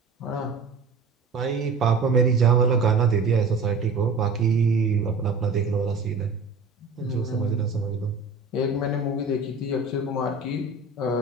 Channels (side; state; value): left; quieter; 4.1 dB